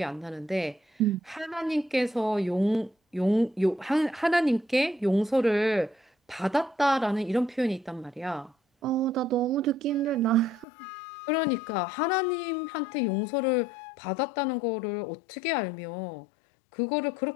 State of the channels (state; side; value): drops out; right; at 10.7 s